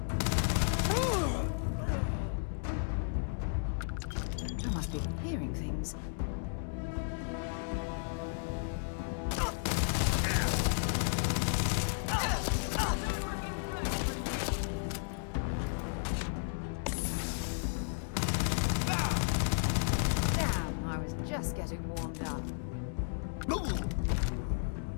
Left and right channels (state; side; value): silent; right; digital silence